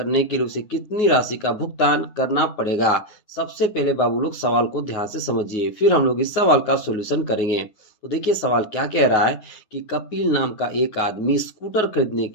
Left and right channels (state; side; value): late; right; 9.4 ms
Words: के लिए उसे कितनी राशि का भुगतान करना पड़ेगा। सबसे पहले बाबू लोग सवाल को ध्यान से समझिए, फिर हम लोग इस सवाल का सॉल्यूशन करेंगे। तो देखिए सवाल क्या कह रहा है कि कपिल नाम का एक आदमी स्कूटर खरीदने